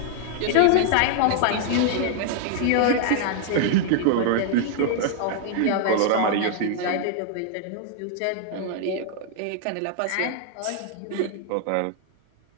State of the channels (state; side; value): different; both; correlation 0.00